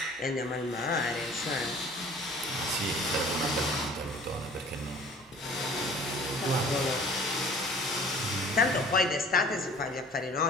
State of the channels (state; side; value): normal; both; correlation 0.49